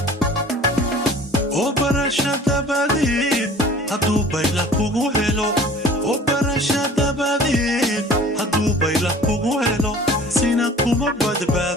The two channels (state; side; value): normal; both; correlation 0.46